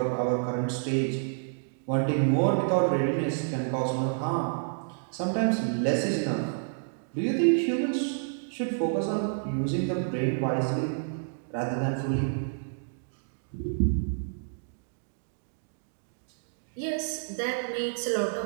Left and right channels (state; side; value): silent; left; digital silence